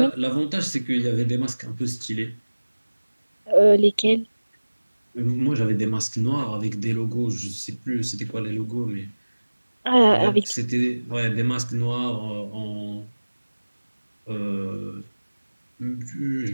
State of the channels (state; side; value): inverted; both; correlation -1.00